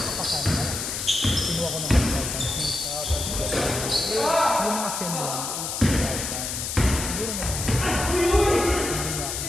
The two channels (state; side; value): noise; left; hiss, 4 dB below the sound